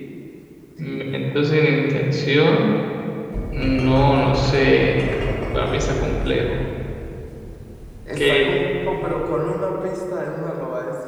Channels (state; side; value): identical; both; correlation 1.00